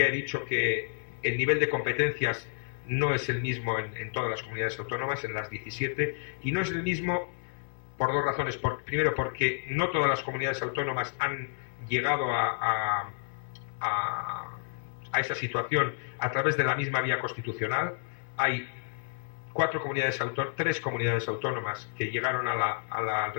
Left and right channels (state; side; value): silent; right; digital silence